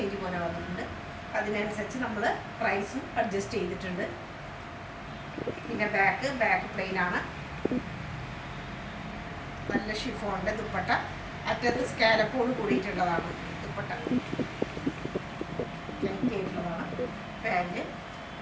പോലെ വന്നിട്ടുണ്ട്. അതിനനുസരിച്ച് നമ്മൾ പ്രൈസും അഡ്ജസ്റ്റ് ചെയ്തിട്ടുണ്ട്. പിന്നെ ബാക്ക് പ്ലെയിനാണ്. നല്ല ഷിഫോണിൻ്റെ ദുപ്പട്ട. അറ്റത്ത് സ്കാലപ്പോട് കൂടിയിട്ടുള്ളതാണ് ദുപ്പട്ട. ലെങ്തി ആയിട്ടുള്ളതാണ്. പാൻറ്റ്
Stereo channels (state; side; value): identical; both; correlation 1.00